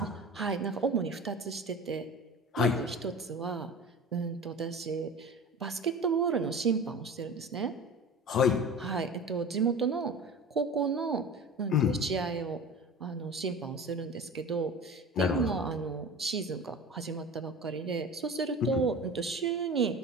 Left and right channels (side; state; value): both; normal; correlation 0.35